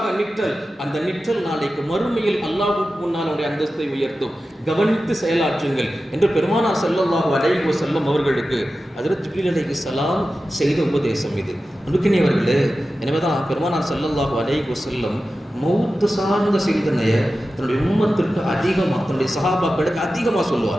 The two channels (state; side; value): normal; both; correlation 0.94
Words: நிற்றல், அந்த நிற்றல் நாளைக்கு மறுமையில் அல்லாஹ்வுக்கு முன்னால் அவனுடைய அந்தஸ்தை உயர்த்தும். கவனித்து செயலாற்றுங்கள் என்று பெருமானார் ஸல்லல்லாஹு அலைஹி வஸல்லம் அவர்களுக்கு ஹஜ்ரத் ஜிப்ரீல் அலைஹிஸ்ஸலாம் செய்த உபதேசம் இது. அன்புக்கினியவர்களே, எனவேதான் பெருமானார் ஸல்லல்லாஹு அலைஹி வஸல்லம் மௌத்து சார்ந்த சிந்தனையை தன்னுடைய உம்மத்திற்கு அதிகமாக, தன்னுடைய சஹாபாக்களுக்கு அதிகமாக